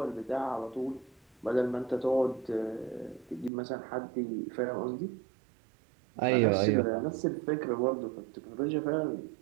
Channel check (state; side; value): drops out; left; at 3.5 s